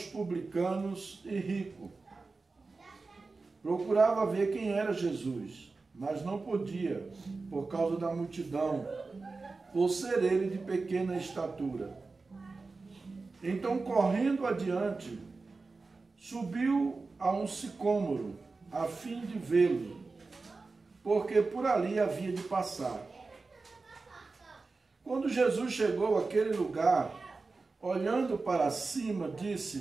publicanos e rico, procurava ver quem era Jesus, mas não podia, por causa da multidão, por ser ele de pequena estatura. Então, correndo adiante, subiu a um sicômoro, a fim de vê-lo, porque por ali havia de passar. Quando Jesus chegou àquele lugar, olhando para cima,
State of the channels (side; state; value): left; quieter; 3.9 dB